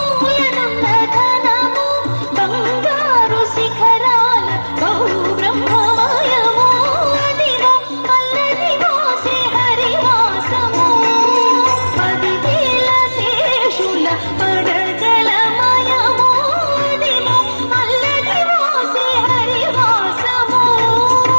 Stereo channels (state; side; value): inverted; both; correlation -1.00